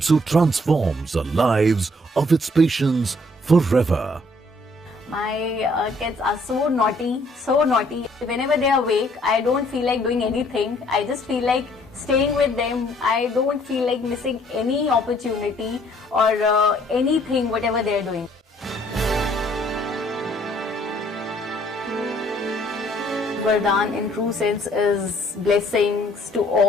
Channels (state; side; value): normal; both; correlation 0.63